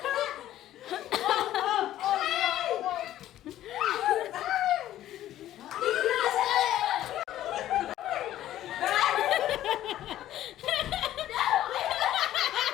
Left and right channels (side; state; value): right; quieter; 13.1 dB